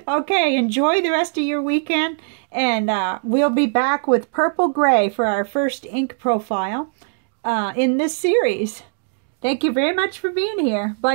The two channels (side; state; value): left; silent; digital silence